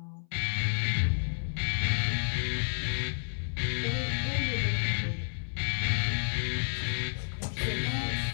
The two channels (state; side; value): silent; right; 57 dB below the other